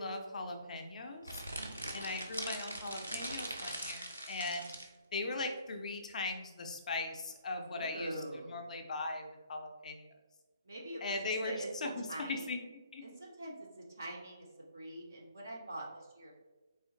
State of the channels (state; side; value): inverted; both; correlation -0.57